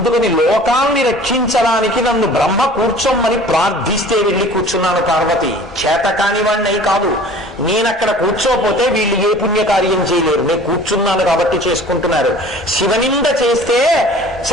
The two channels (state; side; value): normal; both; correlation 0.46